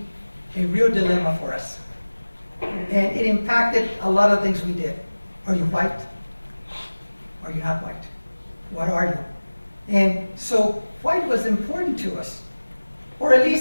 a real dilemma for us. And it impacted a lot of things we did. Are you white? Are you not white? What are you? And so white was important to us, or at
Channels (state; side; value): inverted; both; correlation -1.00